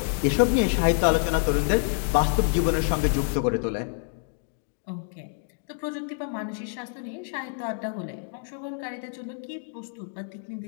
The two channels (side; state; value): right; silent; digital silence